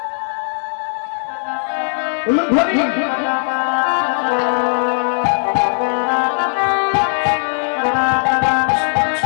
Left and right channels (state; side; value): silent; right; digital silence